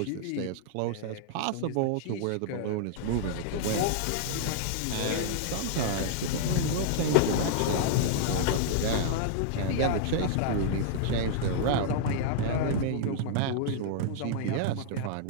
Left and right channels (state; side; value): different; both; correlation -0.01